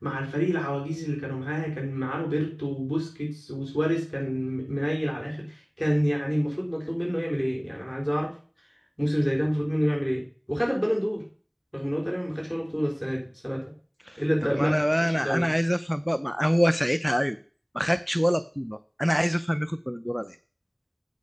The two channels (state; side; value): identical; both; correlation 1.00